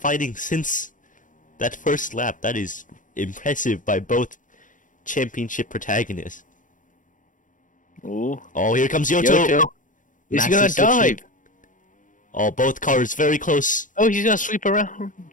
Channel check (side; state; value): right; late; 0.38 ms